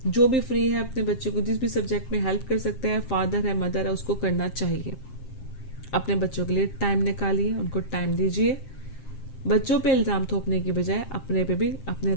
जो भी फ्री है अपने बच्चे को जिस भी सब्जेक्ट में हेल्प कर सकते हैं, फादर है मदर है, उसको करना चाहिए। अपने बच्चों के लिए टाइम निकालिए, उनको टाइम दीजिए। बच्चों पे इल्जाम थोपने की बजाय अपने पे भी, अपने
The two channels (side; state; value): right; late; 7.6 ms